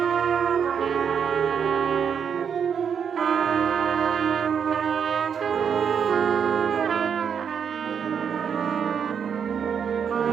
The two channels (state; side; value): quieter; left; 7.3 dB